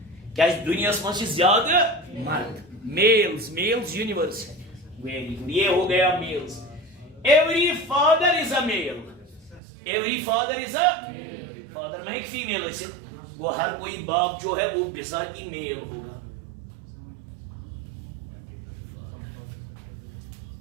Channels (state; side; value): drops out; left; at 9.6 s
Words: क्या इस दुनिया में ज्यादा मर्द? मेल्स यूनिवर्स है. वेरी गुड, ये हो गया males. Every father is a male. Every father is a father. मैं एक फीमेल है, वो हर कोई बाप जो है वो बिजाती मेल होगा.